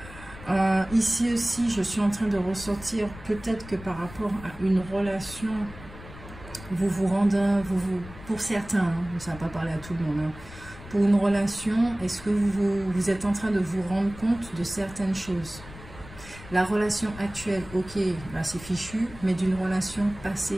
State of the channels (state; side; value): noise; left; rumble, 16 dB below the sound